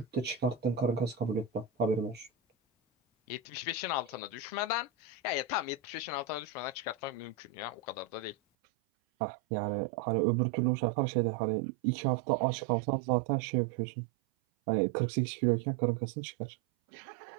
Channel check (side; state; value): left; drops out; at 8.3 s